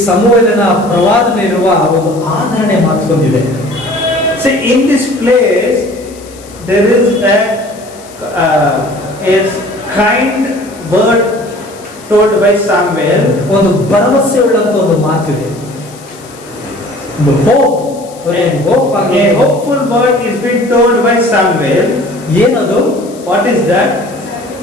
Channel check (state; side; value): noise; left; hiss, 22 dB below the sound